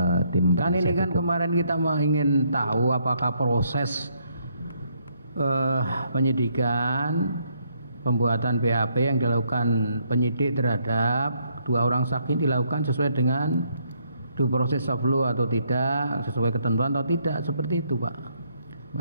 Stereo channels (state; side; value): inverted; both; correlation -0.72